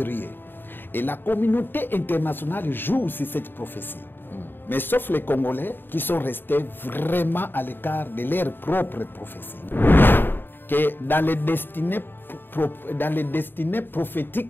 Et la communauté internationale joue sur cette prophétie. Mais sauf les Congolais qui sont restés vraiment à l'écart de leur propre prophétie. Que dans les destinées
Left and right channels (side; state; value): right; late; 0.096 ms